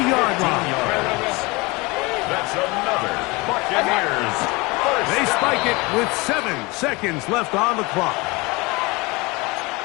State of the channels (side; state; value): right; quieter; 24.7 dB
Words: line. That's another Buccaneers. They spike it with 7 seconds left on the clock.